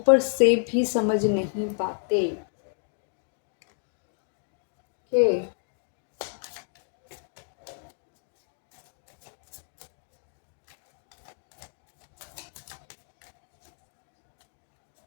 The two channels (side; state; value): right; silent; 58 dB below the other